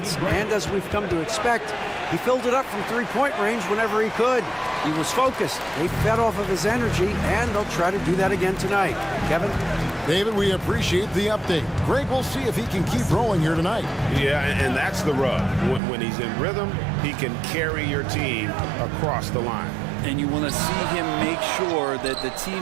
and as we've come to expect, he filled it up from three-point range whenever he could. He was focused. They fed off of his energy, and they'll try to do that again tonight. Kevin? David, we appreciate the update. Greg, we'll see if he can keep rolling here tonight. Yeah, and that's the rub. When he's in rhythm, he can carry your team across the line. And you want to see him make sure that the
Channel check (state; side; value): drops out; left; at 15.8 s